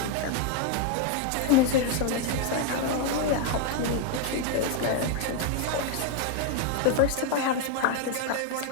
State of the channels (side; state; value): both; different; correlation 0.01